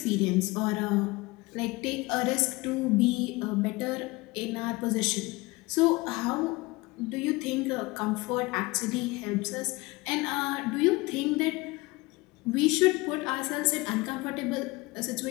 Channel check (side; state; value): right; quieter; 22.9 dB